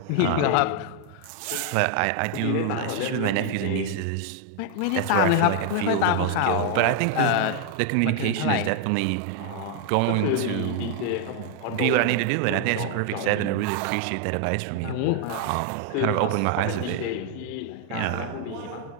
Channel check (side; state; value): both; different; correlation 0.00